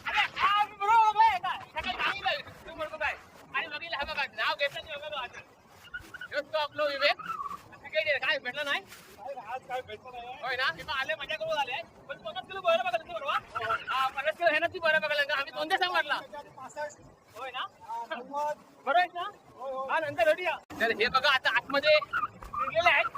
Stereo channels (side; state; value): both; identical; correlation 1.00